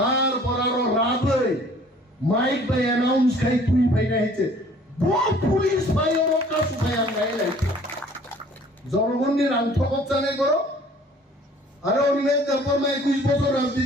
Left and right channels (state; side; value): normal; both; correlation 0.53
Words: আরো রাত হয়ে মাইক বাই অ্যানাউন্স খাই তুই ভাই না হয়েছে পুলিশ ভাই ওর কাছে ভাই আমরা এলাইছে জনগণের আন্তঃকত জানে করো আরে অনিমেষ তারপর 21 বছর